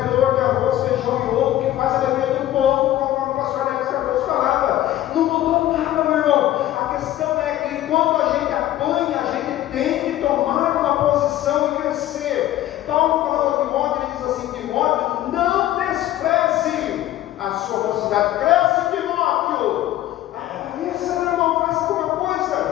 de arroz, feijão e ovo, que faz a alegria do povo, conforme o pastor Alex Cardoso falava. Não mudou nada, meu irmão. A questão é que quando a gente apanha, a gente tem que tomar uma posição e crescer. Paulo falando a Timóteo, ele diz assim: Timóteo, não despreze a sua mocidade, cresce, Timóteo. Isso, meu irmão, faz alguma coisa.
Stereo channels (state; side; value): quieter; right; 13.7 dB